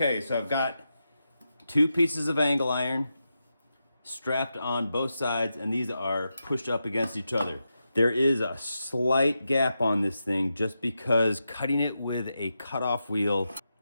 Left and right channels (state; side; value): inverted; both; correlation -0.88